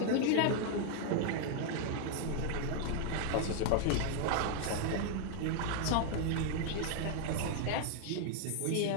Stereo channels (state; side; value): different; both; correlation 0.00